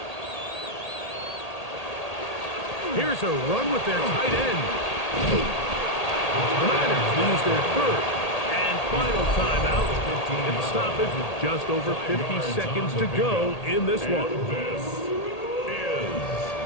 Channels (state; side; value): late; right; 1.8 ms